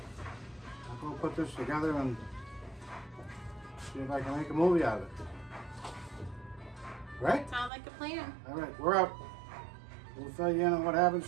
I'll go put this together and see if I can make a movie out of it. Right? Sounds like a plan. All right, we're up. We'll fill you in on what happens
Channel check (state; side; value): drops out; left; at 7.7 s